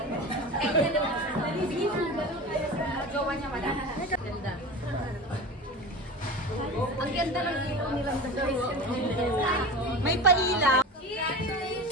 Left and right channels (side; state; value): both; normal; correlation 0.30